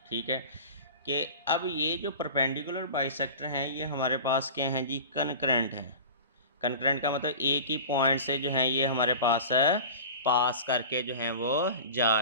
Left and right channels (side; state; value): both; inverted; correlation -0.35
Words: ठीक है कि अब ये जो परपेंडिकुलर बाइसेक्टर हैं ये हमारे पास क्या हैं जी, कनकरेंट हैं। कनकरेंट का मतलब एक ही पॉइंट से जो है ये हमारे पास पास करके जो हैं वो जा